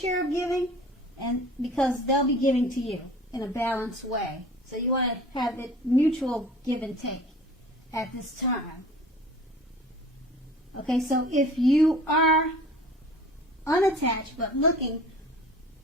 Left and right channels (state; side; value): normal; both; correlation 0.45